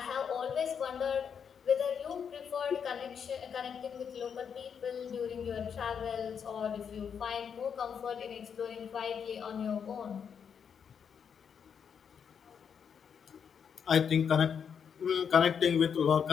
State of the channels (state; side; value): quieter; right; 7.2 dB